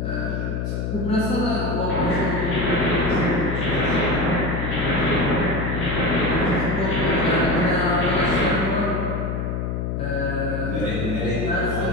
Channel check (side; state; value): left; noise; hum, 2 dB below the sound